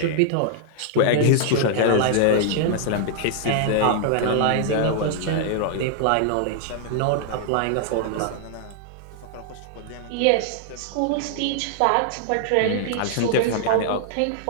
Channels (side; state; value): both; different; correlation 0.00